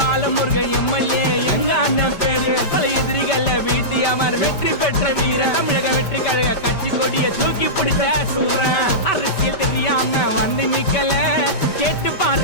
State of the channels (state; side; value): late; right; 5.1 ms